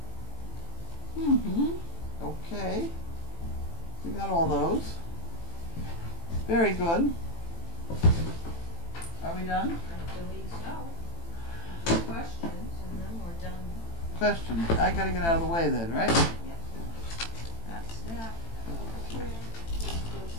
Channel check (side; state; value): right; late; 18 ms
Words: Okay. We got all those. Very good. Are we done? I believe so. Do questions, and then we're done. Questions. I gotta get out of the way then, right? Yep. That's that.